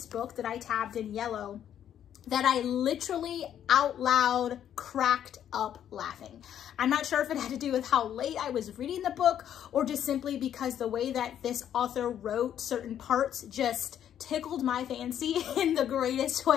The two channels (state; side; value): quieter; right; 10.1 dB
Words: book that I tabbed in yellow that I literally out loud cracked up laughing. I'm not sure if it had to do with how late I was reading the book or just simply because the way that this author wrote certain parts just tickled my fancy in the greatest